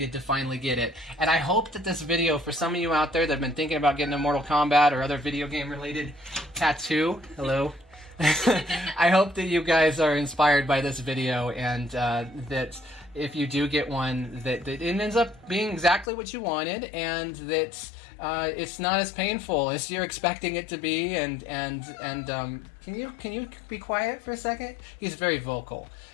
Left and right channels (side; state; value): right; drops out; at 16.1 s